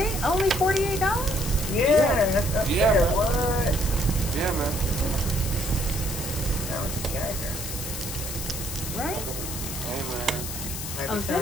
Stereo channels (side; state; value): left; noise; hiss, 6 dB below the sound